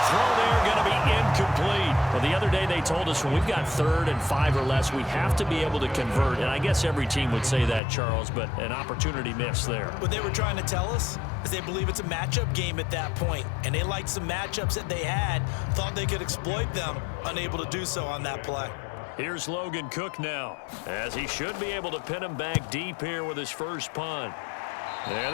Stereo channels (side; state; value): right; drops out; at 7.8 s